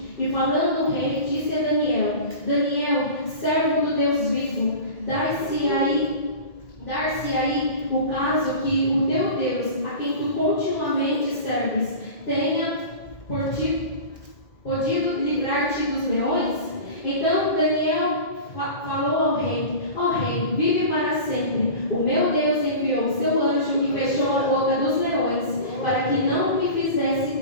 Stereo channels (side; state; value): right; late; 2.1 ms